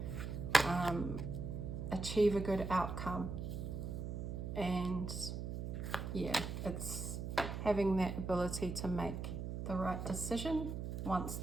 achieve a good outcome. And yeah, it's having that ability to make the right decision once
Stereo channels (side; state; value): right; noise; hum, 4 dB below the sound